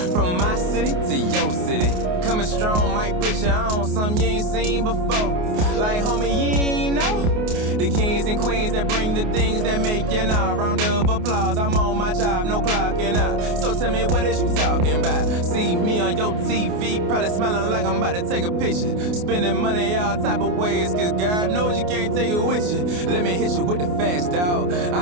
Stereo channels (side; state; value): left; late; 28 ms